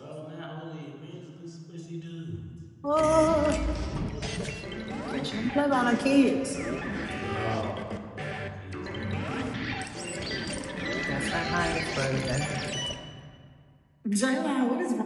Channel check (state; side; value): identical; both; correlation 1.00